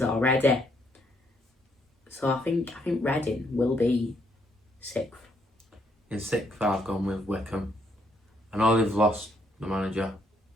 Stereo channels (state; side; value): normal; both; correlation 0.72